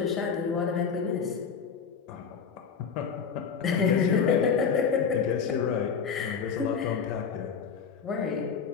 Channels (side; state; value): right; quieter; 6.4 dB